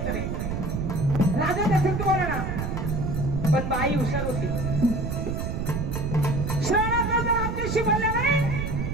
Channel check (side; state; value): right; noise; rumble, 2 dB below the sound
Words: नाही राजा दशरथ बोला ना पण बाई हुशार होती श्रावणाचा जर आमच्याशी बोलला नाही